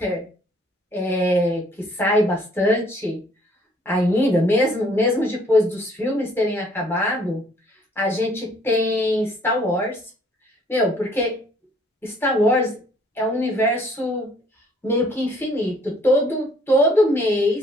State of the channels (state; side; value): normal; both; correlation 0.60